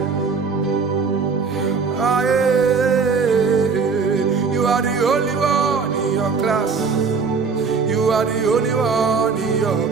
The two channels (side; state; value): left; quieter; 5.1 dB